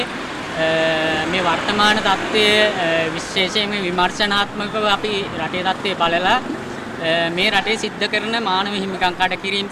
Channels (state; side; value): identical; both; correlation 1.00